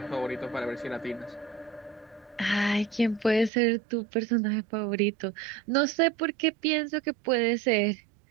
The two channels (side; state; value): left; drops out; at 3.5 s